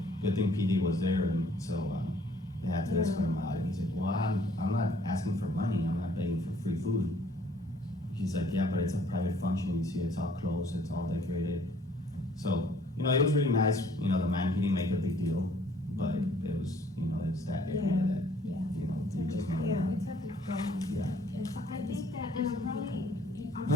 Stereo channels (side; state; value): both; normal; correlation 0.59